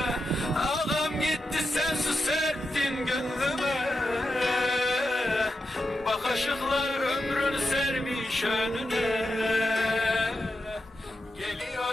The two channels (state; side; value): normal; both; correlation 0.88